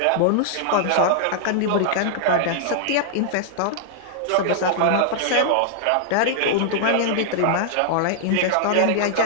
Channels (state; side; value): different; both; correlation -0.01